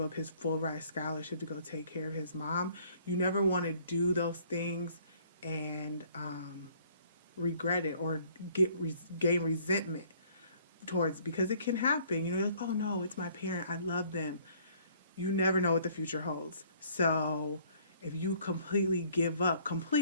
up his full ride scholarship to go take care of his mom. You never want to do those things and regret it or gain resentment towards, because it can happen. You're like, oh no, it's my parent. I love them. You never know what the future holds. So if you completely give up,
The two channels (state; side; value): inverted; both; correlation -0.59